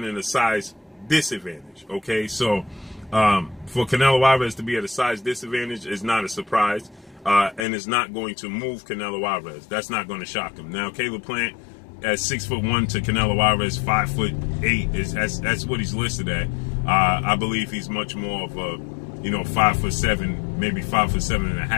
in a size disadvantage, okay? So, for Canelo Alvarez to be at a size disadvantage is not a surprise, and it's not going to move Canelo Alvarez. That's not going to shock him. Now, Caleb Plant at 6'1" to Canelo Alvarez 5'8" that's what he's listed at. I believe he's much more of a, you know, 5'7", maybe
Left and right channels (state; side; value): drops out; right; at 7.6 s